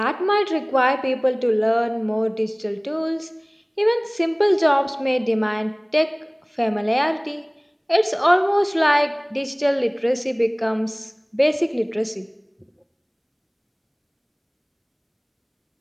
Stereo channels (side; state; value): both; identical; correlation 1.00